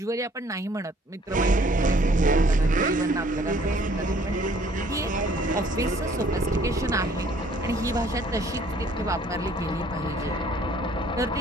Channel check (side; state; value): both; normal; correlation 0.59